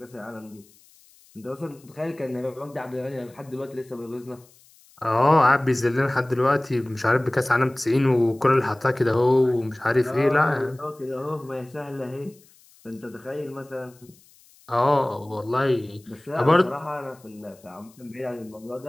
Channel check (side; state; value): left; noise; hiss, 28 dB below the sound